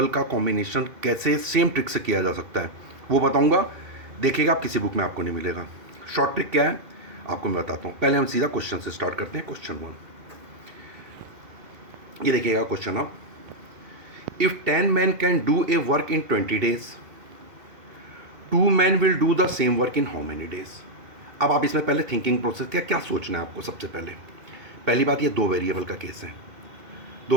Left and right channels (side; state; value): left; late; 2.7 ms